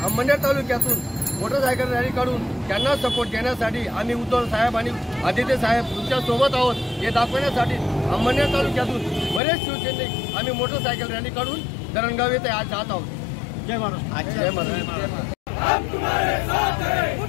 अंमळनेर तालुक्यातून मोटरसायकल रॅली काढून त्यांना सपोर्ट देण्यासाठी आम्ही उद्धव साहेब आणि आदित्य साहेब तुमच्या सोबत आहोत हे दाखवण्यासाठी अंमळनेर तालुक्यातून बरेच शिवसैनिक आम्ही मोटरसायकल रॅली काढून धरणगाव येथे आज जात आहोत। जय महाराष्ट्र। जय महाराष्ट्र। हम तुम्हारे साथ हैं।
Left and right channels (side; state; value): right; drops out; at 9.4 s